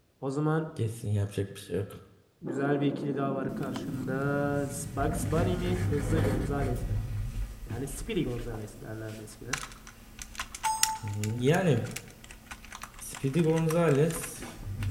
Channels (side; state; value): both; identical; correlation 1.00